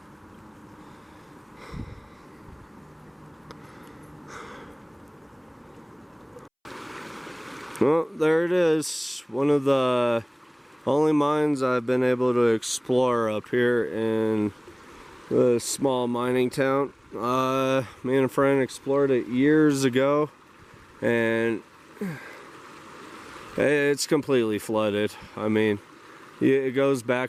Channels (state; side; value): identical; both; correlation 1.00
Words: Well, there it is. One of the only mines I've been able to explore up here in the small mining town. Me and a friend explored it years ago, and it's completely flooded. I mean, it goes